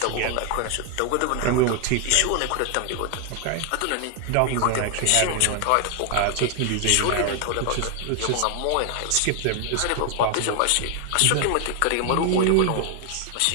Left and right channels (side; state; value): both; different; correlation 0.00